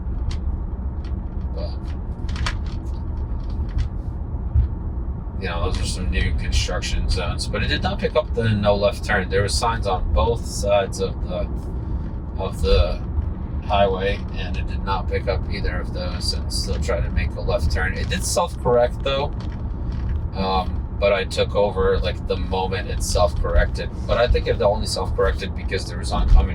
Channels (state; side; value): identical; both; correlation 1.00